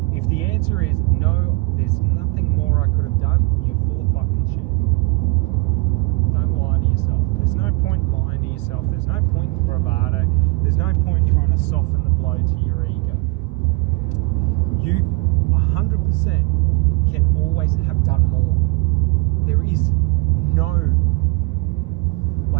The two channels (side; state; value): left; quieter; 25.5 dB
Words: If the answer is no, there's nothing more I could have done, you're full of fucking shit. Don't lie to yourself. There's no point lying to yourself. There's no point in bravado. There's no point trying to soften the blow to your ego. You 100% can always have done more. There is no,